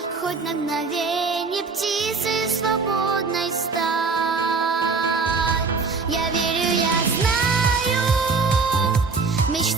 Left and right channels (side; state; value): left; quieter; 4.5 dB